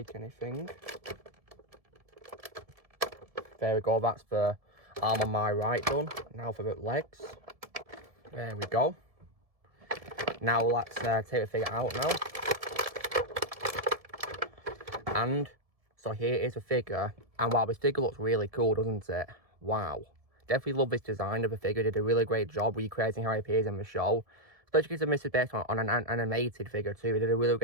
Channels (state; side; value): late; left; 1.7 ms